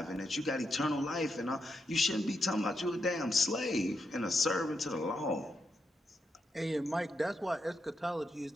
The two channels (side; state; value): both; normal; correlation 0.83